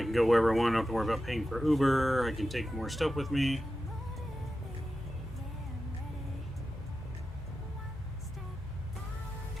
can go wherever I want. I don't have to worry about paying for Uber. I can take more stuff with me.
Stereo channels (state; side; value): normal; both; correlation 0.92